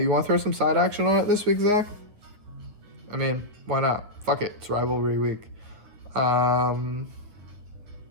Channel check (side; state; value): left; late; 9.6 ms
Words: you want to throw some side action on it this week, Zach? I mean, why not? Fuck it, it's rivalry week. Yeah,